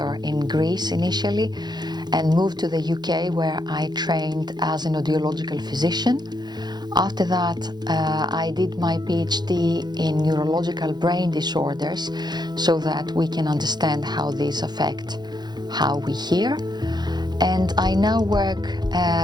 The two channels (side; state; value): left; late; 0.21 ms